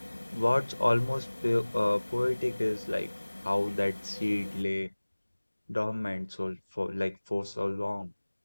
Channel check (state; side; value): inverted; both; correlation -1.00